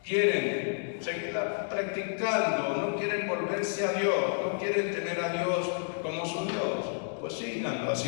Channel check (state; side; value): silent; right; digital silence